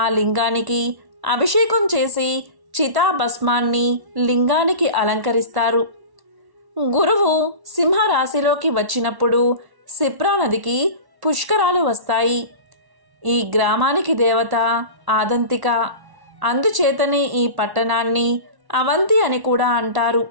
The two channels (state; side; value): late; left; 1.1 ms